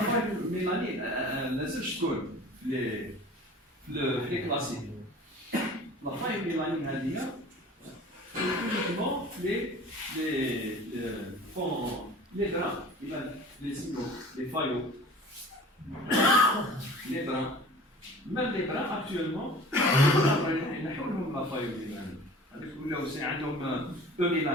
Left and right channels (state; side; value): normal; both; correlation 0.43